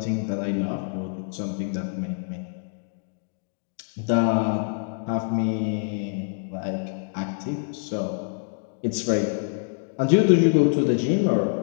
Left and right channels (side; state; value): right; silent; digital silence